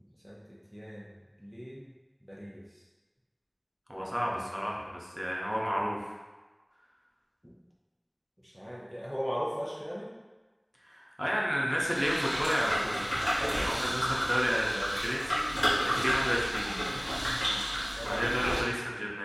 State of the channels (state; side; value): identical; both; correlation 1.00